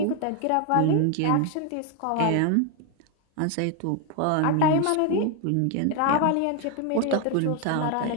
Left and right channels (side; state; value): both; different; correlation 0.01